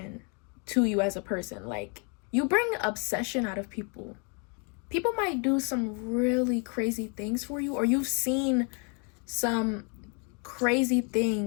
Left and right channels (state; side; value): quieter; right; 36.6 dB